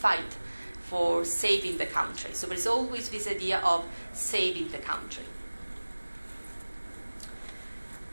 for saving the country. So there's always this idea of saving the country.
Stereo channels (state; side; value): inverted; both; correlation -1.00